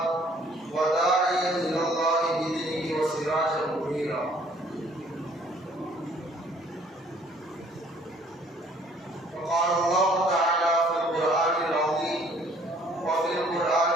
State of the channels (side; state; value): both; normal; correlation 0.59